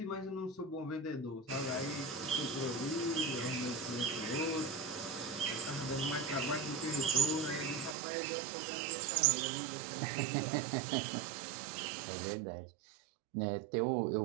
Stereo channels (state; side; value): drops out; left; at 8.0 s